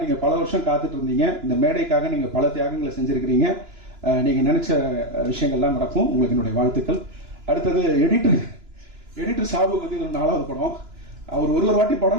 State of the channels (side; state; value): left; late; 2.9 ms